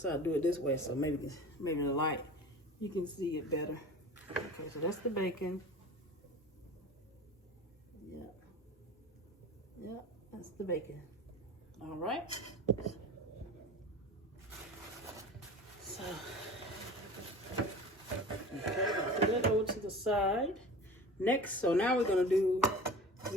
I'll do it this way, so maybe the light you can see it better. Okay, so that's the bacon. Yeah, that's the bacon. All right. So. Okay, I'll put that over to the side. Next, so now we're gonna do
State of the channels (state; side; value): normal; both; correlation 0.37